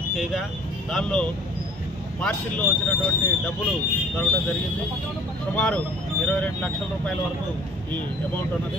చేయగా దానిలో పార్సిల్లో వచ్చినటువంటి డబ్బులు దొరకడం జరిగింది. సుమారు 22 లక్షల రూపాయల వరకు ఈ అమౌంట్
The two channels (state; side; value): normal; both; correlation 0.51